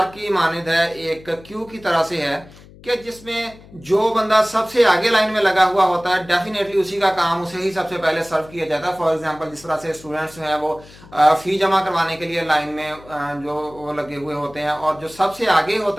की मानद है, एक क्यू की तरह से है कि जिसमें जो बंदा सबसे आगे लाइन में लगा हुआ होता है डेफिनेटली उसी का काम उसे ही सबसे पहले सर्व किया जाता है। फॉर एग्जांपल, जिस तरह से स्टूडेंट्स हैं वो फी जमा करवाने के लिए लाइन में जो वो लगे हुए होते हैं, और जो सबसे आगे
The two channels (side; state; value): left; noise; hum, 22 dB below the sound